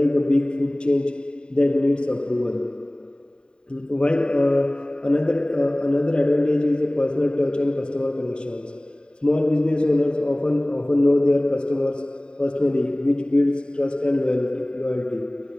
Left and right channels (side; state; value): right; late; 0.050 ms